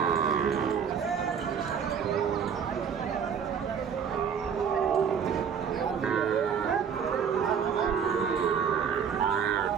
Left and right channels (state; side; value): quieter; left; 7.1 dB